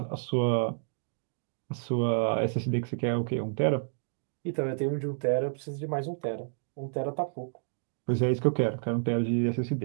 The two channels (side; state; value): left; silent; digital silence